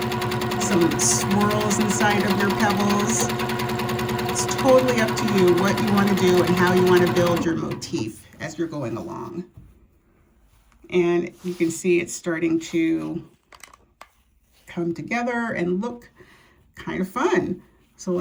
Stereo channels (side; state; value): both; identical; correlation 1.00